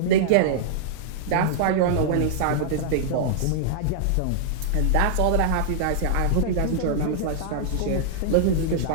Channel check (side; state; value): both; different; correlation -0.02